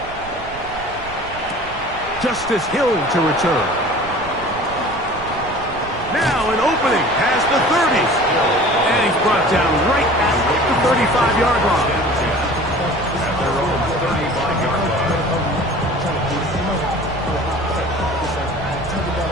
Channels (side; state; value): right; noise; rumble, 16 dB below the sound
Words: Justice Hill to return. Now an opening past the 30s. And he's brought down right at the 35-yard line. At their own 35-yard line.